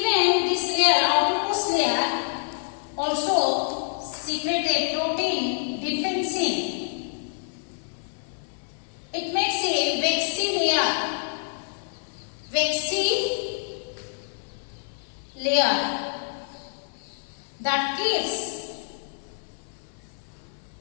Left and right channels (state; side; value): silent; right; 60 dB below the other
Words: this layer, outermost layer, also secrete a protein defensine. It makes a waxy layer that keeps